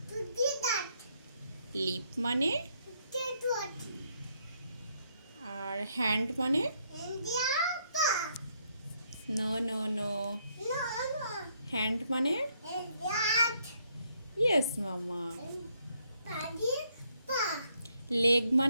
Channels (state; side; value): inverted; both; correlation -0.73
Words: লিপ মানে? আর হ্যান্ড মানে? নো নো নো, হ্যান্ড মানে? ইয়েস মামা। লেগ